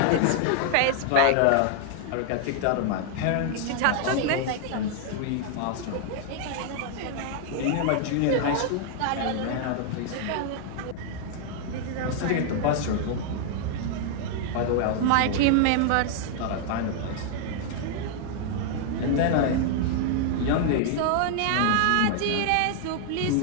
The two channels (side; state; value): both; different; correlation 0.00